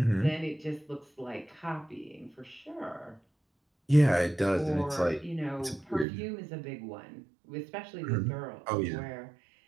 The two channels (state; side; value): drops out; left; at 6.1 s